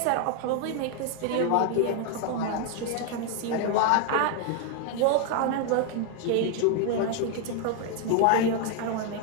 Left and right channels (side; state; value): both; different; correlation 0.00